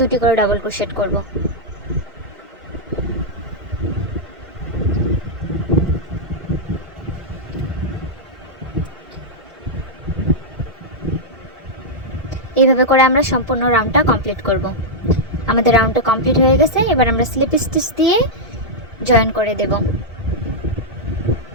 2টি করে ডাবল ক্রোশেট করব। এইভাবে করে আমরা সম্পূর্ণ রাউন্ডটা কমপ্লিট করব। আমাদের রাউন্ডটা কমপ্লিট হয়ে গেছে। এবার আমরা স্লিপ স্টিচ দিয়ে জয়েন করে দেব।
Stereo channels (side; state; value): both; normal; correlation -0.06